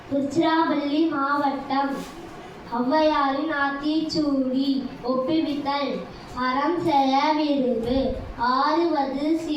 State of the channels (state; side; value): identical; both; correlation 1.00